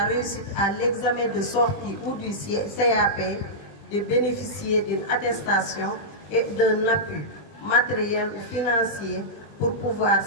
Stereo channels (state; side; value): late; right; 20 ms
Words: réussite à l'examen de sortie ou du CAP, de bénéficier d'une attestation et d'un appui matériel ou financier pour pouvoir